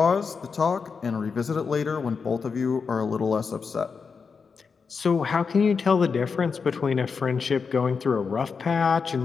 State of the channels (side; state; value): right; quieter; 5.4 dB